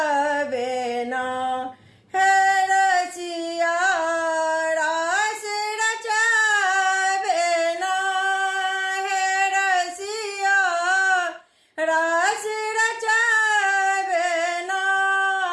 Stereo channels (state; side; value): identical; both; correlation 1.00